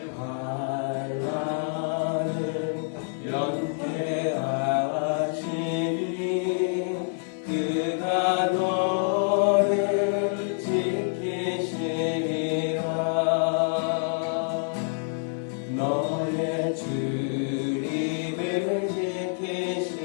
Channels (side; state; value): right; silent; digital silence